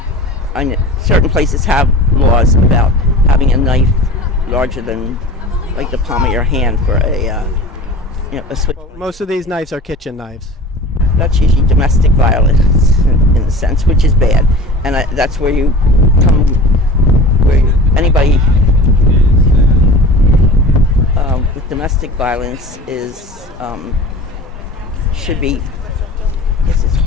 places have laws about having a knife larger than like the palm of your hand for a switch. Well, most of these knives are kitchen knives. That's usually domestic violence in a sense, which is bad, and that's where you come, where anybody with domestic violence is should be. I guess it's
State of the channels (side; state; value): both; normal; correlation 0.38